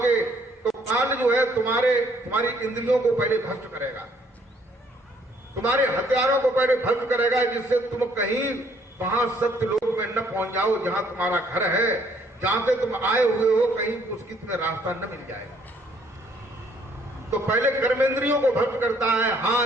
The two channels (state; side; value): normal; both; correlation 0.65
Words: तो काल जो है तुम्हारी इंद्रियों को पहले भ्रष्ट करेगा, तुम्हारे हथियारों को पहले भ्रष्ट करेगा, जिससे तुम कहीं वहां सत्य लोक में न पहुंच जाओ, जहां तुम्हारा घर है, जहां से तुम आए हुए हो, कहीं उसकी तुम्हें रास्ता न मिल जाए। तो पहले कर्मेंद्रियों को भ्रष्ट करता है,